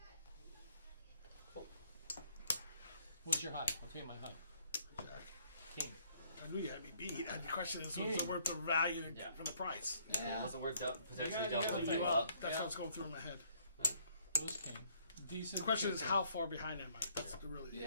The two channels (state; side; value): inverted; both; correlation -0.65